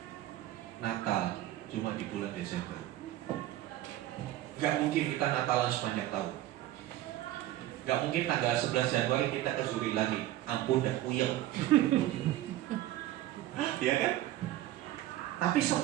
Natal cuma di bulan Desember. Gak mungkin kita Natalan sepanjang tahun. Gak mungkin tanggal 11 Januari kita ke Zuri lagi. Ampun dah puyeng. Iya kan? Tapi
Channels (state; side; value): quieter; left; 14.6 dB